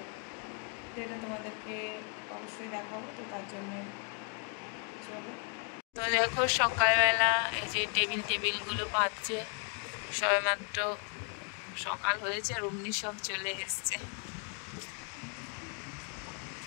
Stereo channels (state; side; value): quieter; right; 39.0 dB